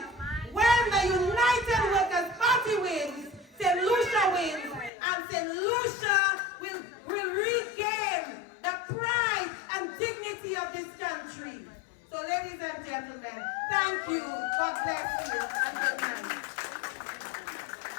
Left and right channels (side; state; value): right; drops out; at 4.9 s